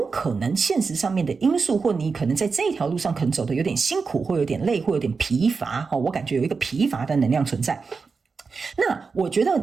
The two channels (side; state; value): left; quieter; 4.8 dB